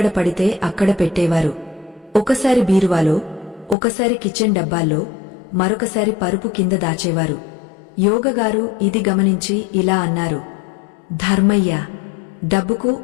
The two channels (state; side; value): drops out; right; at 3.8 s